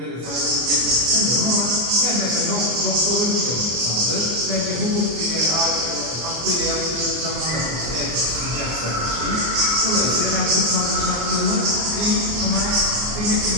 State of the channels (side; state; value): left; late; 24 ms